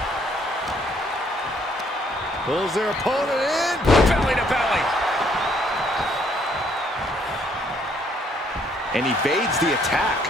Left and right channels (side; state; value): both; normal; correlation 0.67